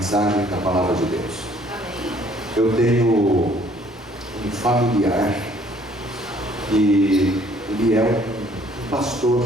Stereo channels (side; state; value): both; normal; correlation 0.59